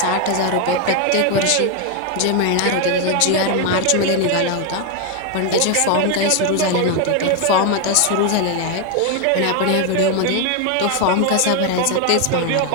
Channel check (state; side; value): different; both; correlation 0.01